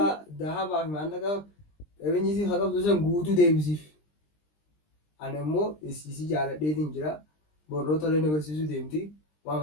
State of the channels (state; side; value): late; right; 20 ms